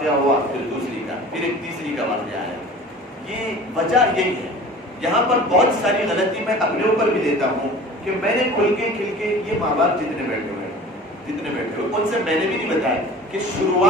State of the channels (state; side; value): normal; both; correlation 0.42